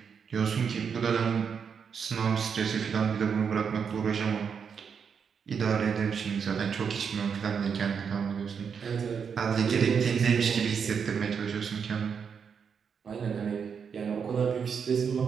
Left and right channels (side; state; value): left; quieter; 6.6 dB